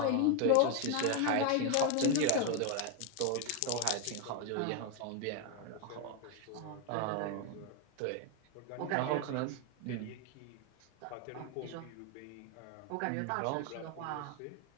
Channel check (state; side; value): different; both; correlation 0.01